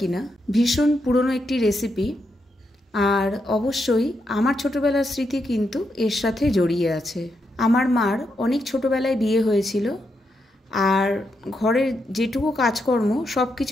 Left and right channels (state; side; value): normal; both; correlation 0.82